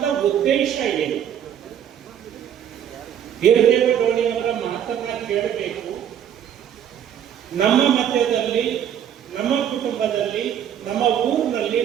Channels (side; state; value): left; quieter; 9.5 dB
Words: ಉದ್ದೇಶ ಏನು? ವೀರದೇವ ಡೋಣಿಯವರ ಮಾತನ್ನ ಕೇಳಬೇಕು. ನಮ್ಮ ಮಧ್ಯದಲ್ಲಿ, ನಮ್ಮ ಕುಟುಂಬದಲ್ಲಿ, ನಮ್ಮ ಊರಿನಲ್ಲಿ,